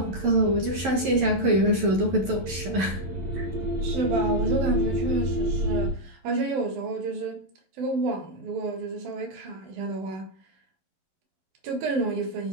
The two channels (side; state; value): left; late; 11 ms